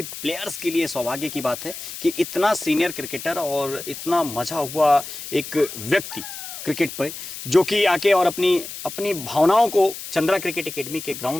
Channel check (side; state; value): left; noise; hiss, 10 dB below the sound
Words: प्लेयर्स के लिए सौभाग्य की बात है कि इतना सीनियर क्रिकेटर और इतना मज़ा हुआ एक व्यक्ति क्रिकेट पे, जो कि आके और अपनी अपनी भावनाओं को चंद्रा क्रिकेट एकेडमी के